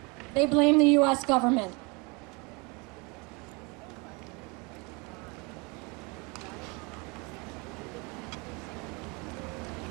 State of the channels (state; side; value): quieter; left; 29.2 dB